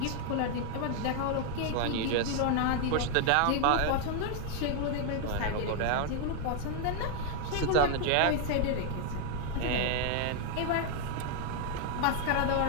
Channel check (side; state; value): both; different; correlation 0.00